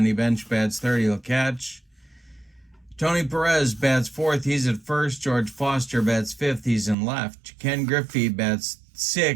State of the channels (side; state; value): left; drops out; at 7.0 s